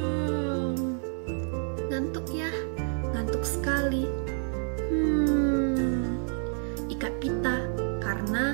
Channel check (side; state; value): left; silent; 56 dB below the other